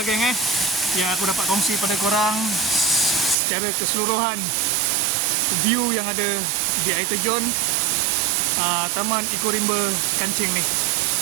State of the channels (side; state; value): left; drops out; at 3.4 s